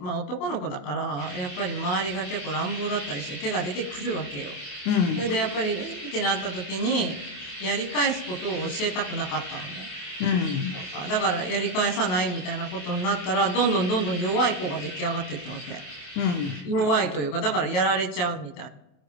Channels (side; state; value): right; late; 28 ms